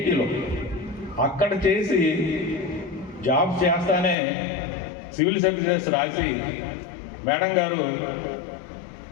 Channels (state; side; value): drops out; right; at 4.2 s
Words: అక్కడ చేసి జాబ్ చేస్తానే సివిల్ సర్వీసెస్ రాసి మేడం గారు